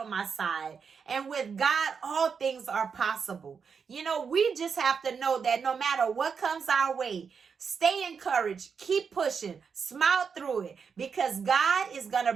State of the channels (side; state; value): left; quieter; 6.1 dB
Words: my side. And with God, all things are possible. You know, we just have to know that no matter what comes our way, stay encouraged, keep pushing, smile through it, because God is going to